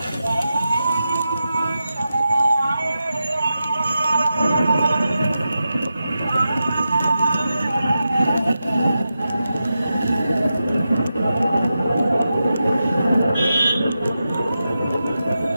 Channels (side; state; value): both; inverted; correlation -0.90